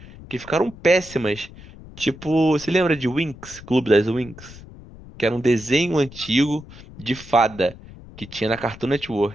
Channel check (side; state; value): left; noise; rumble, 18 dB below the sound